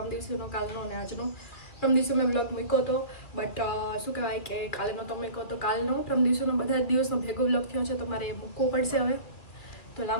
દિવસનો, કાલનો અને આજનો. પરમ દિવસે મેં વ્લોગ મૂક્યો હતો, બટ શું કહેવાય કે કાલે નહોતો મૂક્યો તો કાલનો પરમ દિવસનો બધા જ દિવસનો ભેગો વ્લોગ થયો છે તો મારે મૂકવો પડશે હવે. તો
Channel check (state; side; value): late; right; 2.5 ms